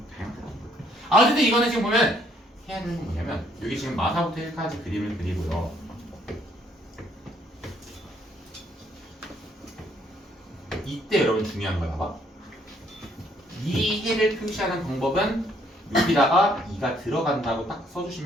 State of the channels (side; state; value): both; normal; correlation 0.67